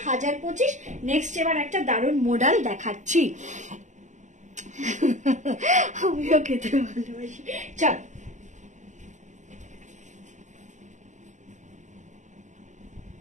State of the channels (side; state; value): left; late; 0.35 ms